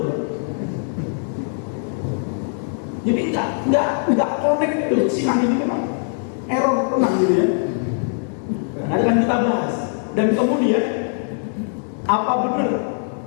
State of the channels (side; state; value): right; silent; digital silence